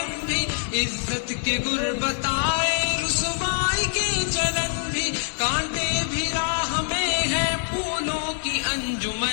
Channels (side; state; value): right; silent; 62 dB below the other